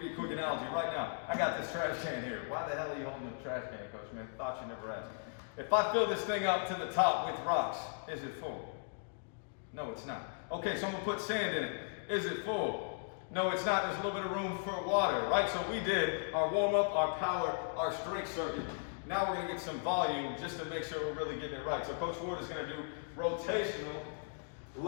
you a quick analogy right now. I got this trash can here. Why the hell are you holding the trash can, coach, man? Thought you never asked. If I fill this thing up to the top with rocks, is it full? No, it's not. Okay, so I'm gonna put sand in it. Is it full? No, it's not. There's a little bit of room for water, right? So we did our warm-up, our power, our strength circuit. Now we're going to get some volume just to make sure we're really getting it right. So Coach Ward is going to do rotational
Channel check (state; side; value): silent; right; digital silence